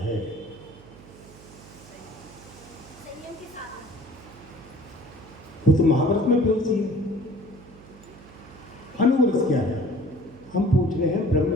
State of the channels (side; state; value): right; noise; hum, 20 dB below the sound